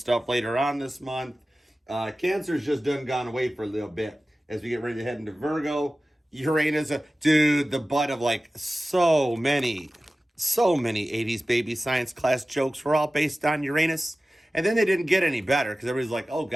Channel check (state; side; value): normal; both; correlation 0.96